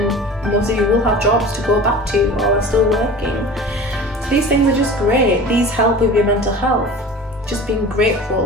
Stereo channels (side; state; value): both; normal; correlation 0.38